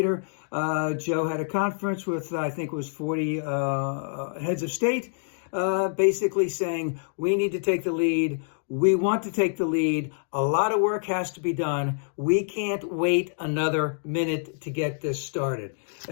Joe had a conference with, I think it was 40 heads of state, basically saying we need to take the lead. We want to take the lead. A lot of work has to be done. We can't wait another minute to get this started.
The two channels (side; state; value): right; silent; digital silence